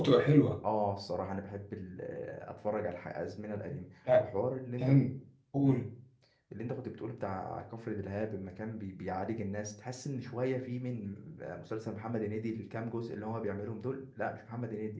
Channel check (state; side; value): identical; both; correlation 1.00